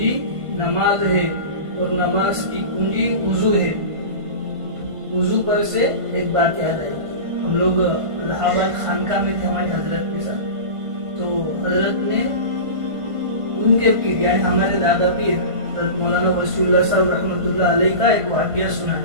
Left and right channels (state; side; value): late; left; 1.5 ms